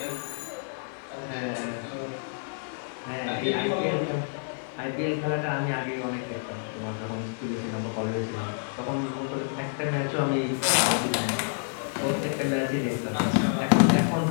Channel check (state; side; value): silent; right; digital silence